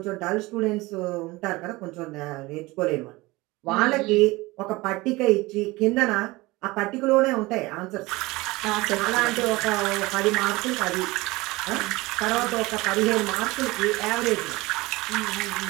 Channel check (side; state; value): left; quieter; 21.5 dB